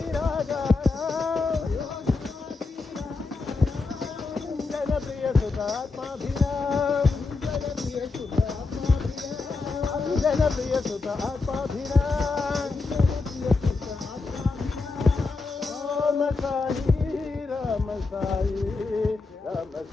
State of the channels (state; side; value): quieter; right; 4.0 dB